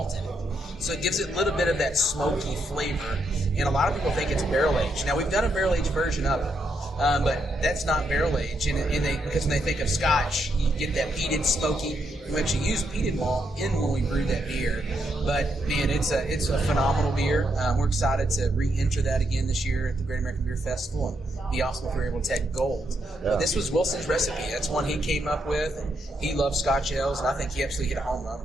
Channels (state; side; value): normal; both; correlation 0.79